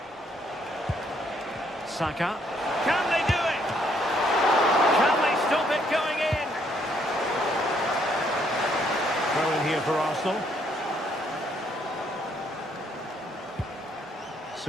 Saka. Can they do it? Can they stop it going in? Throw in here for Arsenal.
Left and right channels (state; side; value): normal; both; correlation 0.69